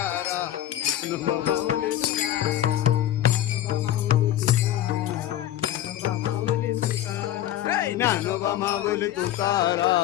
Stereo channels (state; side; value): quieter; right; 12.5 dB